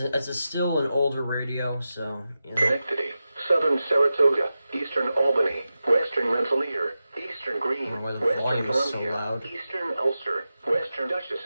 still an older radio, so yeah. Connectivity. Southern Saratoga, Eastern Albany, Western Rensselaer, Eastern Greene, I don't know why the Western volume is so Columbia, loud. Eastern Ulster, Western Dutchess,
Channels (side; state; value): both; inverted; correlation -0.92